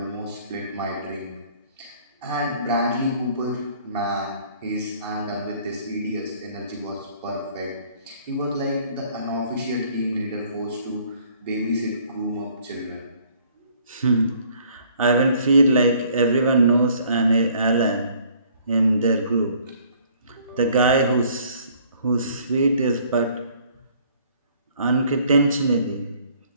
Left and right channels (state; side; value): inverted; both; correlation -0.59